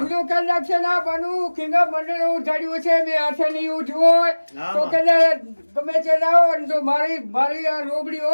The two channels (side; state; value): both; inverted; correlation -1.00